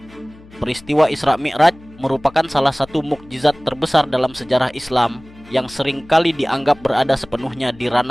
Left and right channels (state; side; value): noise; left; hum, 23 dB below the sound